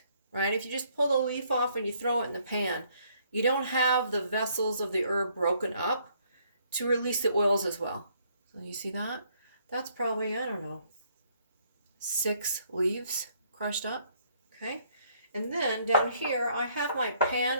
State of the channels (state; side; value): inverted; both; correlation -0.66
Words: right? If you just pull the leaf off and you throw it in the pan, you don't have the vessels of the herb broken up to release the oils as well. So you see that? That's probably, I don't know, 6 leaves crushed up, okay? And then down here, I have my pan